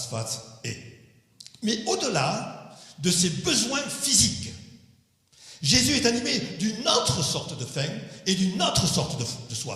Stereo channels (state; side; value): identical; both; correlation 1.00